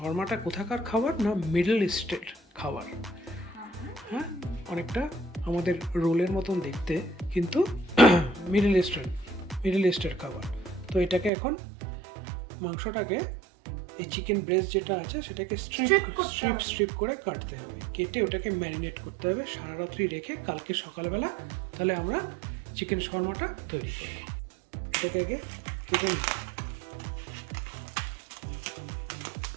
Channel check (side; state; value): left; drops out; at 11.3 s